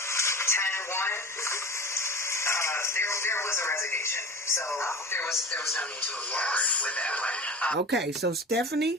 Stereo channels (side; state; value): both; normal; correlation 0.34